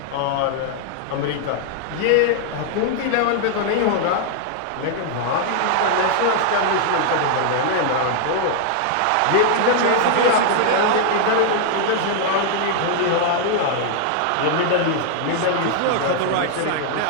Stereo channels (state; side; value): different; both; correlation -0.01